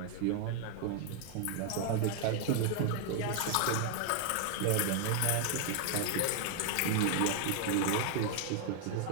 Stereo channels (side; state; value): both; different; correlation 0.00